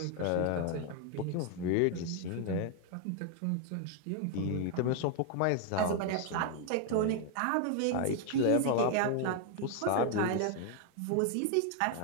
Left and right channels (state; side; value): different; both; correlation 0.00